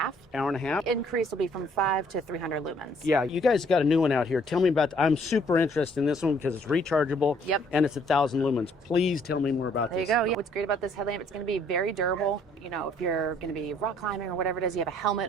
Hour and a half? Increase will be from 5 to 300 lumens. Yeah, you guys got a new one out here. Tell me about. I'm super interested in this one because it's rechargeable. Yep. And it's 1,000 lumens. Please tell me more about There this. you go. Yeah. What's great about this headlamp, it's going to be very durable. If you're going to be rock climbing or whatever it is, you have a helmet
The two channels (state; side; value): normal; both; correlation 0.63